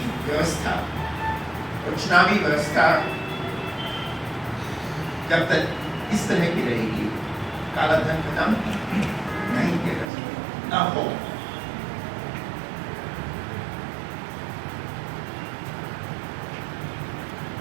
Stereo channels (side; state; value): left; drops out; at 10.1 s